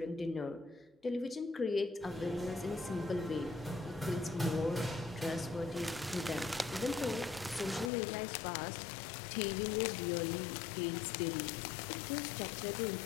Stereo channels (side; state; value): right; drops out; at 7.9 s